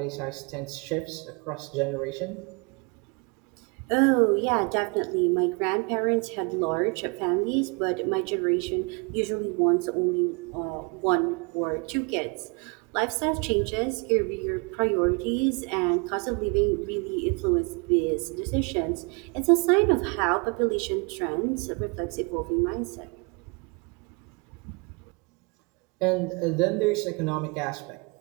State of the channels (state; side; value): quieter; left; 31.5 dB